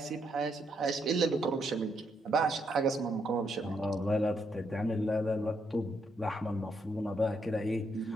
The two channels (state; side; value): normal; both; correlation 0.77